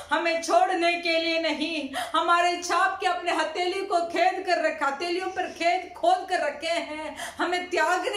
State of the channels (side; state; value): both; identical; correlation 1.00